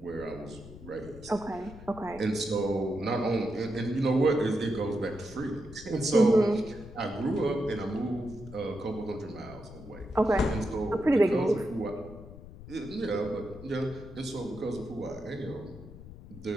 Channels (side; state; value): left; noise; rumble, 16 dB below the sound